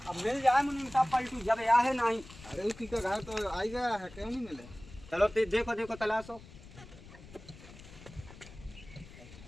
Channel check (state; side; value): noise; left; rumble, 18 dB below the sound